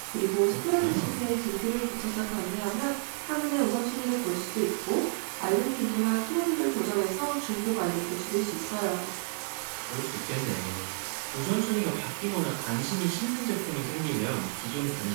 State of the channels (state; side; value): silent; left; 58 dB below the other